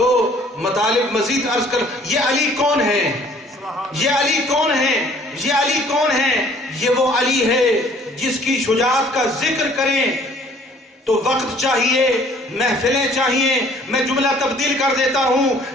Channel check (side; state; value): both; normal; correlation 0.57